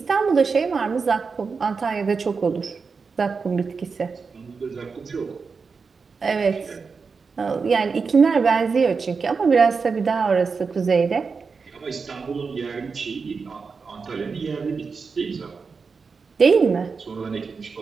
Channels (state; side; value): quieter; left; 5.0 dB